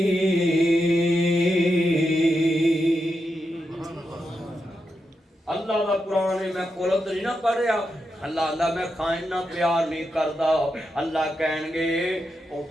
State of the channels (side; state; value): both; normal; correlation 0.86